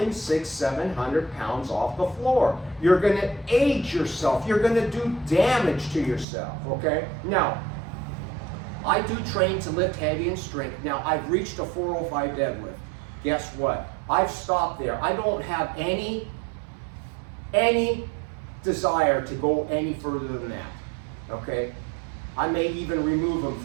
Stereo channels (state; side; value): drops out; left; at 6.2 s